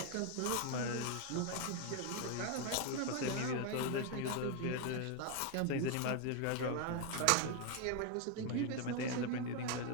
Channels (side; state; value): both; different; correlation 0.01